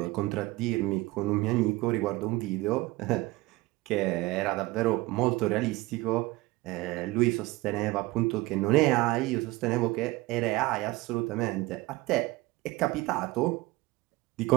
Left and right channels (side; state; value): left; quieter; 20.6 dB